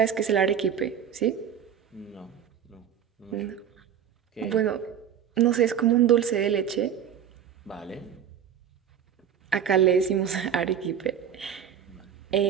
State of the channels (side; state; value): left; quieter; 8.7 dB